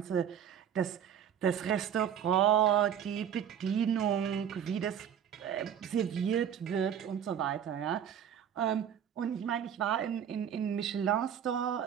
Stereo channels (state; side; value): quieter; left; 8.9 dB